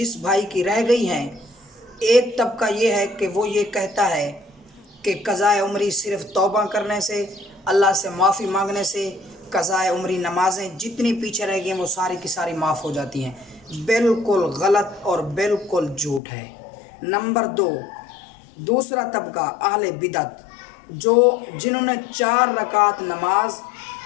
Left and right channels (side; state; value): right; drops out; at 16.2 s